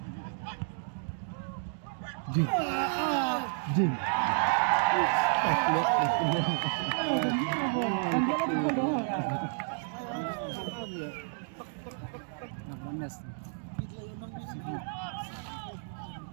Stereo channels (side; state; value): left; silent; digital silence